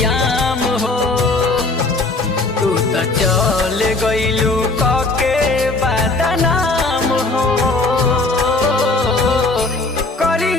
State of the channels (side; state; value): right; quieter; 3.3 dB